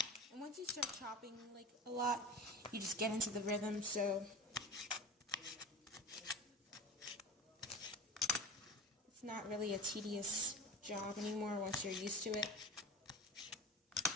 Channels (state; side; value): normal; both; correlation 0.33